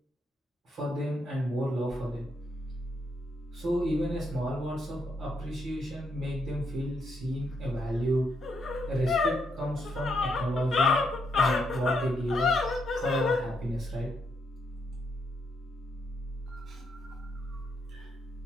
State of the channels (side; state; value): both; normal; correlation 0.77